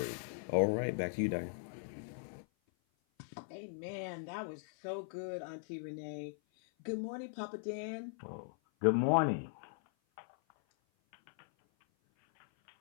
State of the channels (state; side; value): silent; right; 52 dB below the other